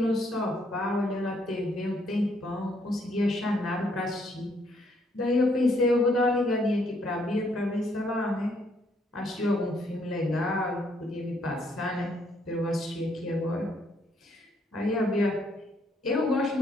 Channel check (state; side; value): normal; both; correlation 0.70